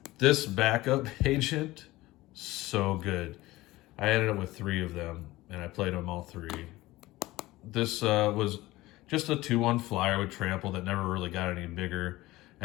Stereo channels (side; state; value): right; quieter; 18.5 dB